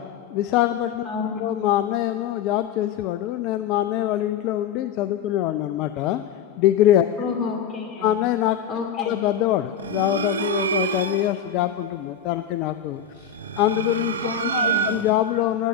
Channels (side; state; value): right; quieter; 7.9 dB